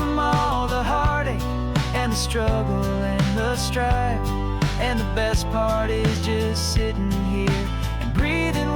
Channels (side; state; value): both; identical; correlation 1.00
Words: all the heartache and the struggle and the strife. And the best part is just sitting here and breathing